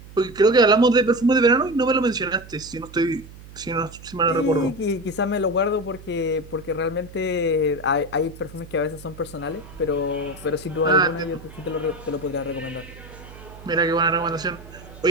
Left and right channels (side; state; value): right; noise; hum, 18 dB below the sound